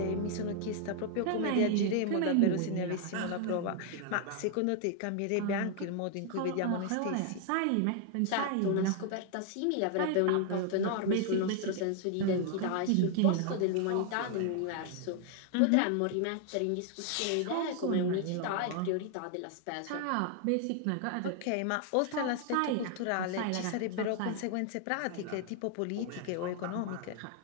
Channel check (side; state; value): both; different; correlation 0.00